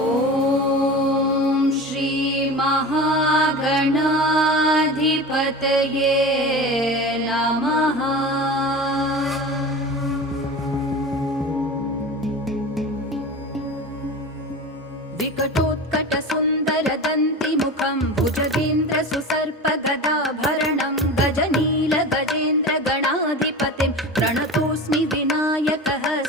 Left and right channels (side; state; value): both; normal; correlation 0.31